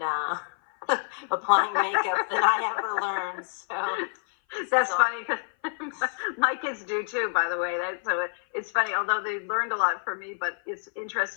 applying makeup than I ever learned. So that's funny because my kids do too, by the way. It's funny, although they learned a lot from me, but it's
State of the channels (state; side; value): silent; right; 56 dB below the other